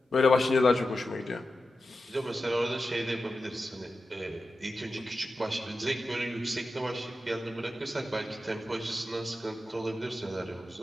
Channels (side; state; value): both; normal; correlation 0.91